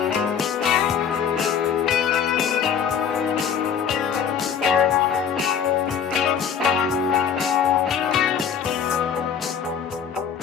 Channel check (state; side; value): quieter; right; 7.7 dB